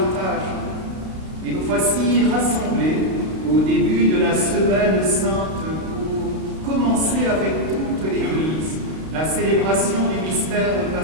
Et nous voici rassemblés au début de la Semaine Sainte pour commencer avec toute l'Église la célébration du mystère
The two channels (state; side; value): late; left; 32 ms